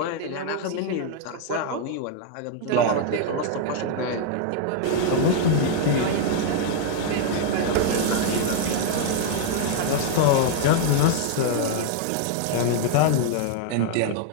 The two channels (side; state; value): both; different; correlation 0.00